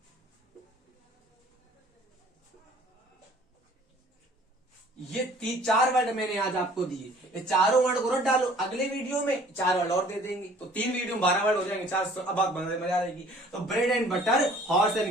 ये चार वर्ड मैंने आज आपको दिए, ये चारों वर्ड को रट डालो। अगले वीडियो में चार वर्ड और दे देंगे, तो 3 वीडियो में 12 वर्ड हो जाएंगे, 4 अब बात मजा आएगी। तो bread and butter, horse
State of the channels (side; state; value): both; normal; correlation 0.53